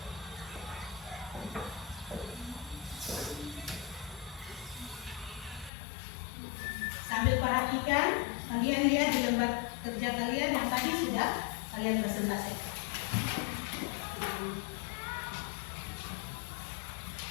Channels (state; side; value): drops out; right; at 5.7 s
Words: Sambil perhatikan, kalian lihat di lembar kerja kalian yang tadi sudah kalian presentasikan.